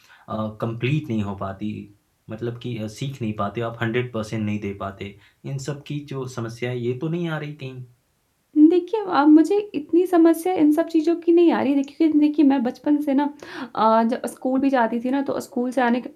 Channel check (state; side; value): identical; both; correlation 1.00